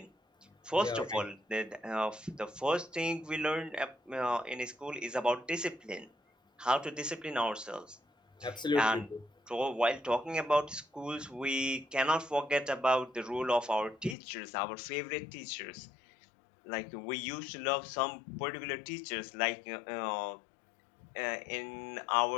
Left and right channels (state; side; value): drops out; right; at 14.2 s